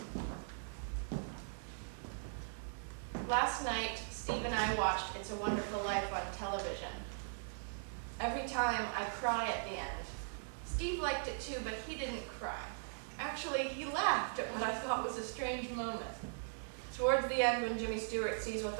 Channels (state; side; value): silent; left; digital silence